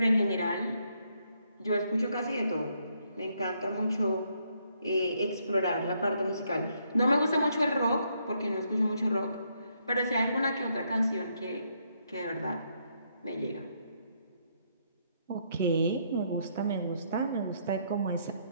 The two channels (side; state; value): both; inverted; correlation -0.74